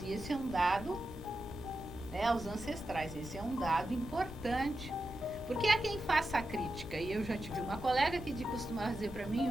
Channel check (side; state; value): both; normal; correlation 0.89